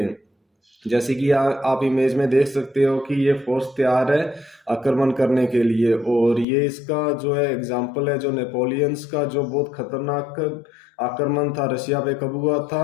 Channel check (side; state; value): right; drops out; at 6.5 s